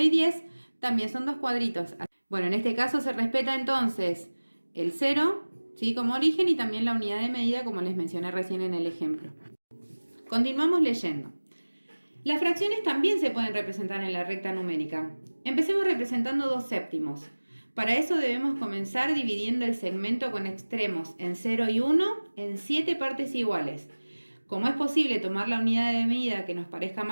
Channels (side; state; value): both; inverted; correlation -1.00